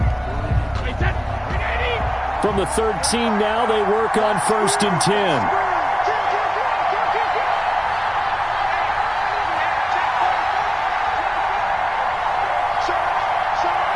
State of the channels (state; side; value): identical; both; correlation 1.00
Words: From the 13 now, they work on 1st and 10.